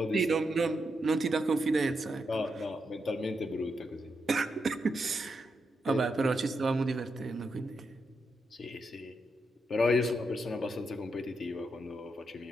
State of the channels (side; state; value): both; normal; correlation 0.83